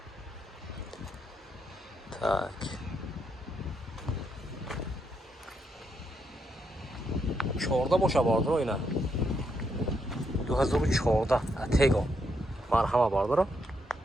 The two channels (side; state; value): both; normal; correlation 0.78